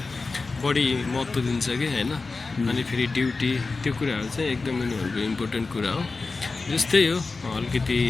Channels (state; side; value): quieter; right; 3.9 dB